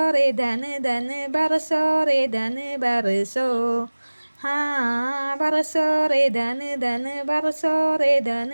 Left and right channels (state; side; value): inverted; both; correlation -1.00